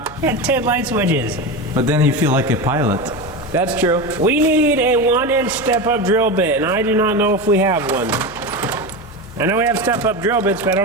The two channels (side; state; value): left; noise; hum, 20 dB below the sound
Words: It had 10 light switches. But then you feel like a pilot. That's true. We need a 1-inch step-up drill bit, and I do not know if we have one. I know we have step-up drill bits, but I